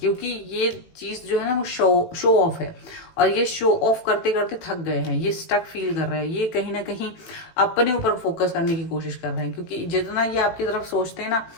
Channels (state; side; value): late; right; 18 ms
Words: ये चीज जो है ना वो शो ऑफ है, और ये शो ऑफ करते करते थक गए हैं, ये स्टक फील कर रहे हैं, ये कहीं ना कहीं अपने ऊपर फोकस करने की कोशिश कर रहे हैं। क्योंकि जितना ये आपकी तरफ सोचते हैं ना,